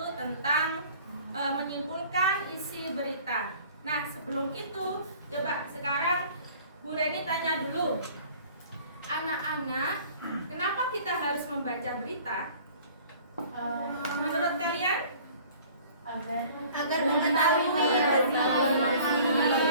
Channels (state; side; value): inverted; both; correlation -0.50